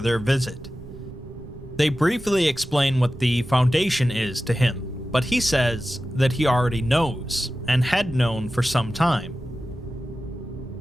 visit. They briefly explain what the Foundation is to him, but he says that he already knows, and had known for some time.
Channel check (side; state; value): right; noise; rumble, 16 dB below the sound